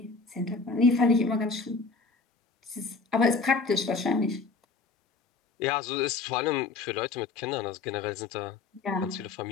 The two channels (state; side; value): quieter; right; 4.3 dB